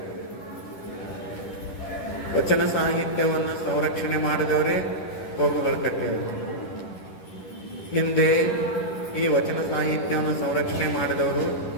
ವಚನ ಸಾಹಿತ್ಯವನ್ನು ಸಂರಕ್ಷಣೆ ಮಾಡಿದವರೇ ಪ್ರಭು ಹೊಳಕಟ್ಟಿಯವರು. ಹಿಂದೆ ಈ ವಚನ ಸಾಹಿತ್ಯವನ್ನು ಸಂರಕ್ಷಣೆ ಮಾಡಿದವರು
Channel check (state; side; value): late; right; 10 ms